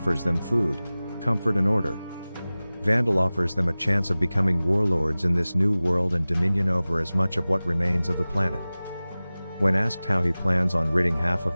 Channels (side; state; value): both; inverted; correlation -0.98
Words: them food, comfort and order. Vandal offers them a chance of becoming warlords in this new world and dominion over as much of what remains of the planet. When asked how he plans on ridding half